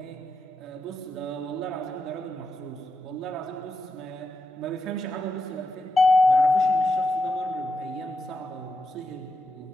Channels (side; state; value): both; normal; correlation 0.86